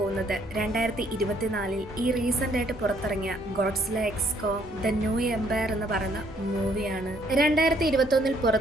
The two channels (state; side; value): normal; both; correlation 0.66